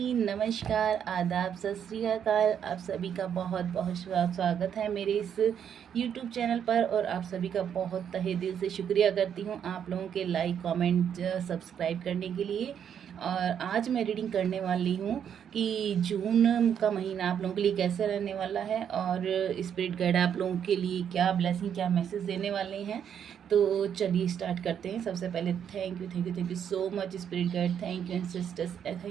नमस्कार, आदाब, सत श्री अकाल। आप सभी का बहुत बहुत स्वागत है मेरे इस यूट्यूब चैनल पर। और आप सभी का बहुत तहे दिल से शुक्रिया करती हूँ आप लोगों के लाइक कमेंट सब्सक्राइब करने के लिए। और आज मैं रीडिंग करने वाली हूँ कि जून का महीना आप लोगों के लिए कैसे रहने वाला है और स्पिरिट गाइड आप लोगों के लिए क्या ब्लेसिंग, क्या मैसेज देने वाले हैं। तो चलिए स्टार्ट करते हैं। सबसे पहले thank you so much spirit guide, thank you sisters,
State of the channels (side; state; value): left; quieter; 8.5 dB